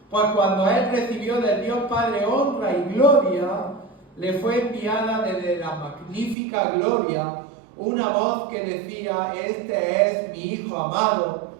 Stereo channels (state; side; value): drops out; left; at 6.4 s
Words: Pues cuando Él recibió del Dios Padre honra y gloria, le fue enviada desde la magnífica gloria una voz que decía: este es mi Hijo amado,